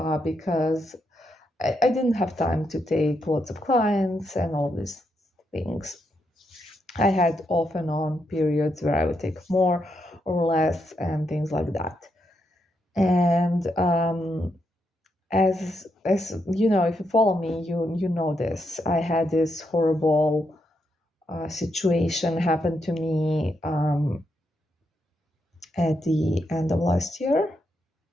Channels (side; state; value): both; normal; correlation 0.81